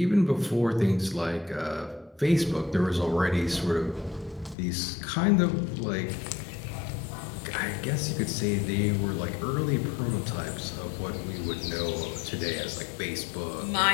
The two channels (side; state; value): right; drops out; at 4.5 s